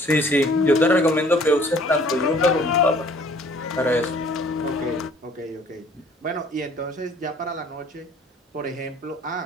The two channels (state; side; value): normal; both; correlation 0.55